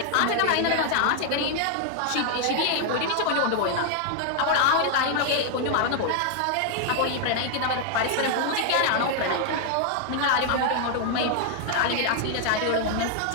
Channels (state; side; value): different; both; correlation 0.00